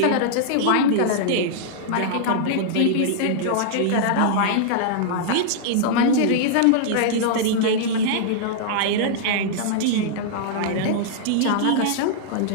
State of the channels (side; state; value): both; different; correlation -0.01